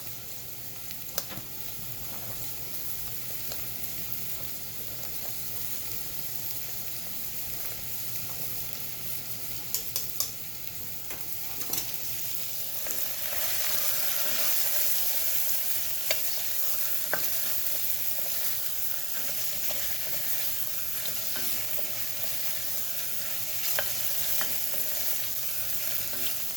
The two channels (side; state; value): both; normal; correlation 0.90